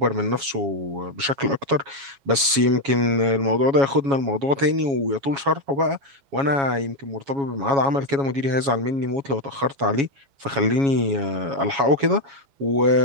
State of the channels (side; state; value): left; late; 7.2 ms